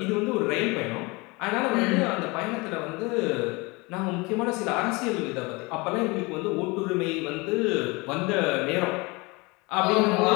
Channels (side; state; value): right; quieter; 25.8 dB